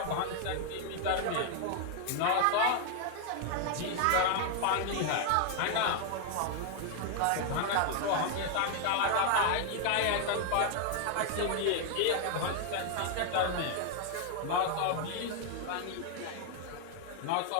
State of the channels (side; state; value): both; different; correlation 0.00